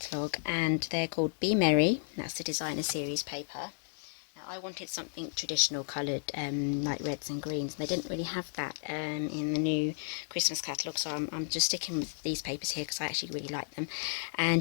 and they're called Be Merry. That's the designer series paper. I wanted something traditional coloured, like reds and greens. They didn't really have that in the new Christmas catalogue, so I'm just sticking with these papers here because I actually really like them.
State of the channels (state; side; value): silent; right; 56 dB below the other